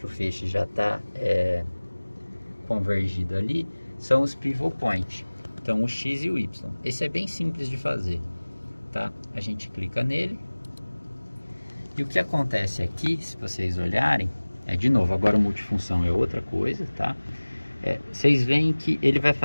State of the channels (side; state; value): both; inverted; correlation -1.00